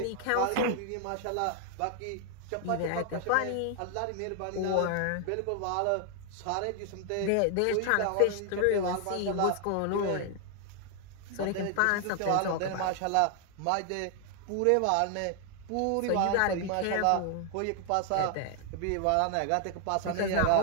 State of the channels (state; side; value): different; both; correlation 0.00